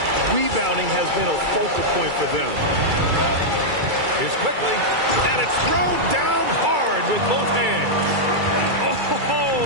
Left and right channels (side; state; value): left; late; 2.3 ms